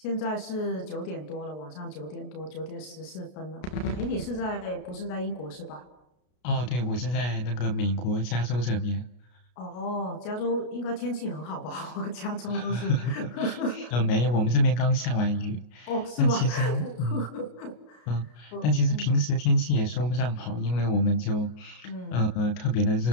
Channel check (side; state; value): right; late; 33 ms